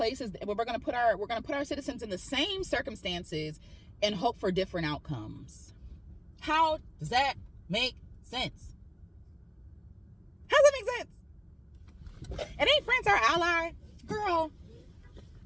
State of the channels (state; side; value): identical; both; correlation 1.00